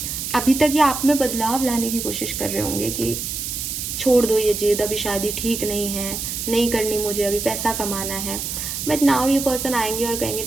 अभी तक ये आप में बदलाव लाने की कोशिश कर रहे होंगे कि छोड़ दो ये जिद, अभी शादी ठीक नहीं है, नहीं करनी मुझे, अभी पैसा कमाना है। बट नाउ ये पर्सन आएंगे और कहेंगे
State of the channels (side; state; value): right; noise; hiss, 4 dB below the sound